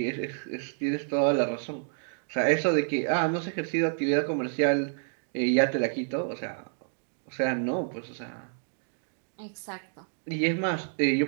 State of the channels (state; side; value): silent; left; digital silence